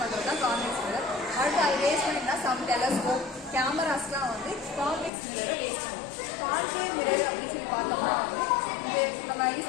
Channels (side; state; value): right; drops out; at 5.1 s